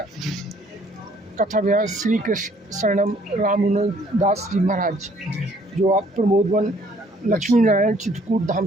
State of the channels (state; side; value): normal; both; correlation 0.61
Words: कथा व्यास श्री कृष्ण शरणम रामानुजन दास जी महाराज जो आप प्रमोदवन लक्ष्मी नारायण चित्रकूट धाम